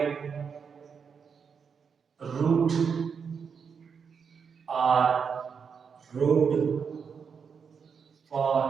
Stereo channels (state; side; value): quieter; left; 6.3 dB